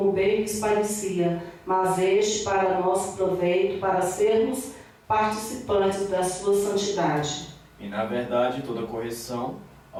bem lhes parecia, mas este para nosso proveito, para sermos participantes da sua santidade. E na verdade toda correção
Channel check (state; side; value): identical; both; correlation 1.00